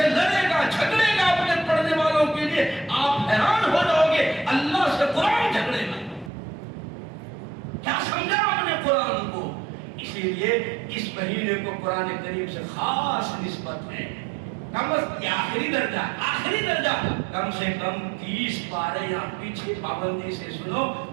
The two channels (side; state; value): left; drops out; at 6.3 s